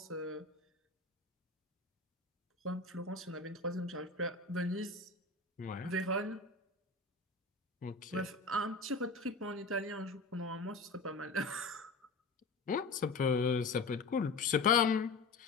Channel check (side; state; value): right; quieter; 3.7 dB